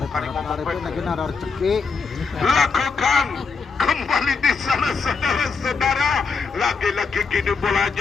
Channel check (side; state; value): right; quieter; 4.9 dB